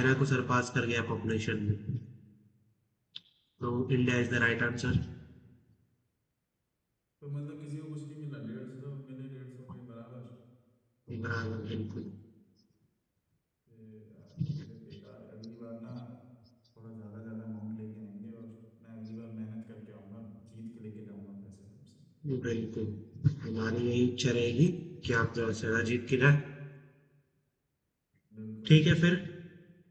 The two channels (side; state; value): both; identical; correlation 1.00